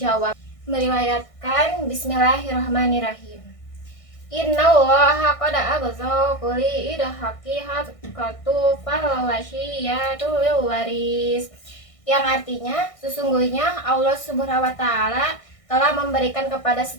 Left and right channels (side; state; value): right; late; 1.6 ms